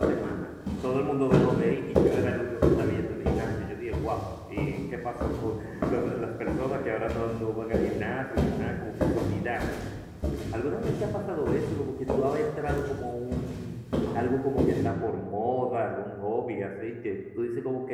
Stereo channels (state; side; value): identical; both; correlation 1.00